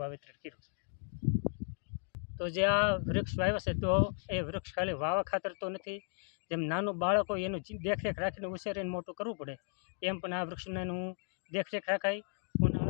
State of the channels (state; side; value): silent; right; 54 dB below the other